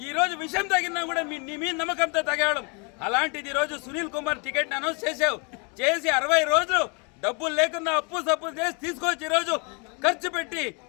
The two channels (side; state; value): right; quieter; 34.3 dB